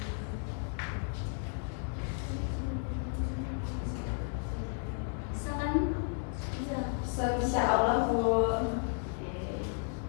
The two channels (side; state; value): right; silent; 55 dB below the other